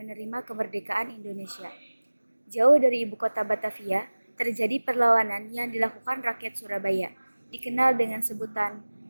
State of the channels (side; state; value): both; inverted; correlation -1.00